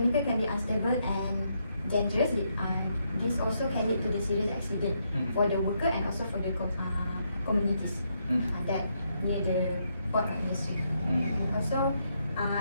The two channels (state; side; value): inverted; both; correlation -0.78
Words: can be unstable and dangerous. This also can lead to the serious accident for the worker and also for the communities that near the port of industry. Also,